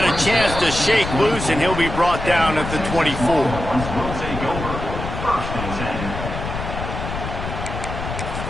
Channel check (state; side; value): noise; left; rumble, 6 dB below the sound